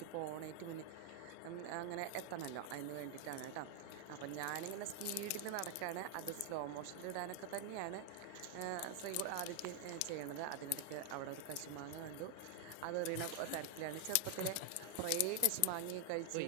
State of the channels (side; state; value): both; different; correlation 0.00